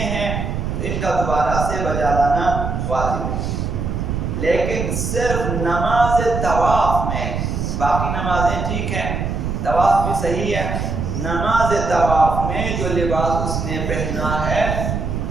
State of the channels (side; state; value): right; noise; rumble, 2 dB below the sound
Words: ہیں تو ان کا دوبارہ سے بجا لانا واجب ہے، لیکن صرف نماز طواف میں، باقی نمازیں ٹھیک ہیں، طواف بھی صحیح ہے، نماز طواف میں جو لباس اس نے پہنا ہے